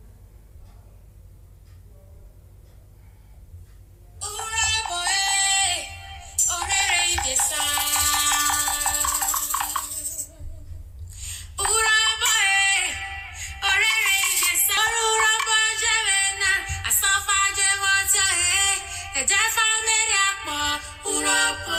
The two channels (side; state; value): both; identical; correlation 1.00